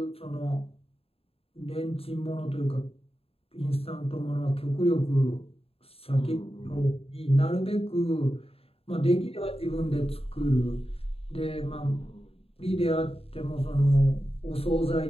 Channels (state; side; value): late; right; 0.28 ms